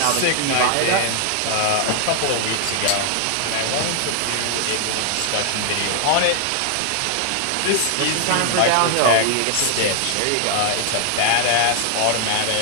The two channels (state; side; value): different; both; correlation 0.00